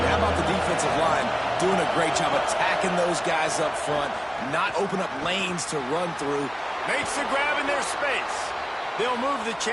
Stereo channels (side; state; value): both; identical; correlation 1.00